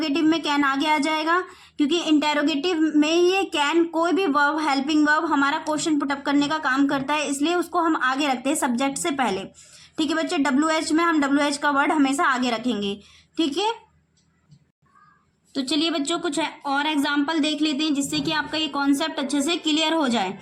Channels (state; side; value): identical; both; correlation 1.00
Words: में कैन आगे आ जाएगा क्योंकि इंटेरोगेटिव में ये कैन कोई भी वर्ब, हेल्पिंग वर्ब हमारा क्वेश्चन पुटअप करने का काम करता है, इसलिए उसको हम आगे रखते हैं सब्जेक्ट से पहले। ठीक है बच्चे, WH में हम WH का वर्ड हमेशा आगे रखेंगे। ठीक है, तो चलिए बच्चों कुछ और एग्जाम्पल देख लेते हैं जिससे कि आपका ये कॉन्सेप्ट अच्छे से क्लियर हो जाए।